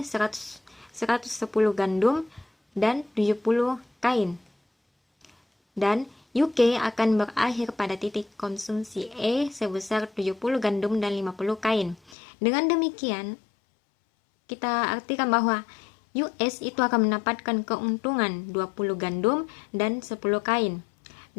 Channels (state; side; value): drops out; right; at 12.2 s